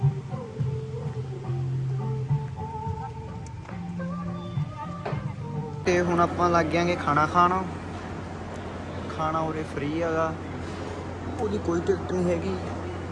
ਤੇ ਹੁਣ ਆਪਾਂ ਲੱਗ ਜਾਾਂਗੇ ਖਾਣਾ ਖਾਣ। ਖਾਣਾ ਉਰੇ ਫ੍ਰੀ ਹੈਗਾ, ਉਹਦੀ ਕੋਈ ਟਿਕਟ ਨਹੀਂ ਹੈਗੀ।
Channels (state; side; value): identical; both; correlation 1.00